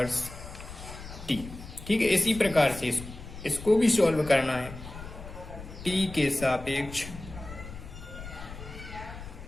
t। ठीक है, इसी प्रकार से इसको भी सॉल्व करना है, t के सापेक्ष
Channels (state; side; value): noise; left; rumble, 13 dB below the sound